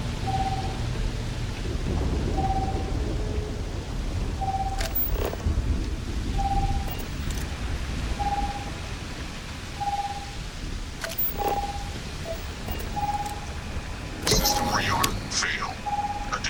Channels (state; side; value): identical; both; correlation 1.00